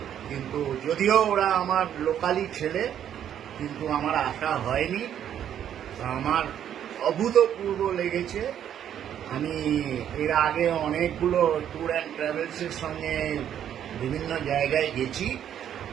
কিন্তু যদিও ওরা আমার লোকালি ছেলে, কিন্তু আমার আসা হয়নি। আমার অভূতপূর্ব লেগেছে। আমি এর আগে অনেকগুলো ট্যুর অ্যান্ড ট্রাভেলসের সঙ্গে বিভিন্ন জায়গায় গেছি,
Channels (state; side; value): quieter; left; 9.9 dB